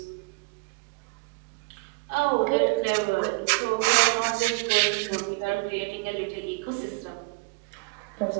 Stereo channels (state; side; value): quieter; left; 29.6 dB